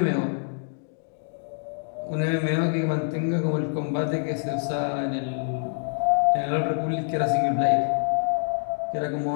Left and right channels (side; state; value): right; silent; digital silence